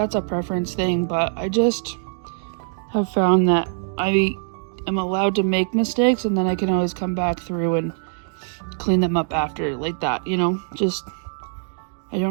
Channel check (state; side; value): silent; left; digital silence